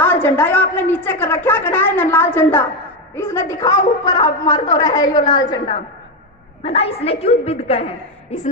झंडा है आपने नीचे कर रखा है ना लाल झंडा, इसने दिखाओ ऊपर आप मार दो रहे यो लाल झंडा है ना। इसने क्यों बिद कहे,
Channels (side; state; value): both; normal; correlation 0.10